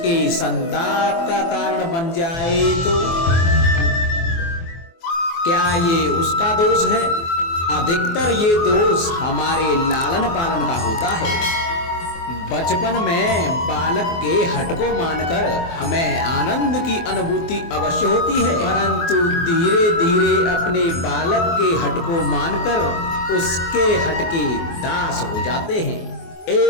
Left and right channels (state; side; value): late; right; 24 ms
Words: संताप का कारण बन जाए तो क्या ये उसका दोष है? अधिकतर ये दोष हमारे लालन पालन का होता है। बचपन में बालक के हट को मानकर हमें आनंद की अनुभूति अवश्य होती है, परंतु धीरे धीरे अपने बालक के हट को मानकर उसके हट के दास हो जाते हैं।